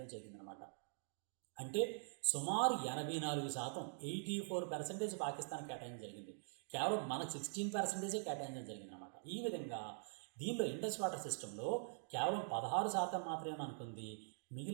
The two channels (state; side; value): silent; left; digital silence